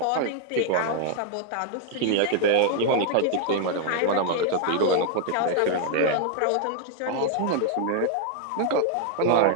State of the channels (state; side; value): different; both; correlation 0.00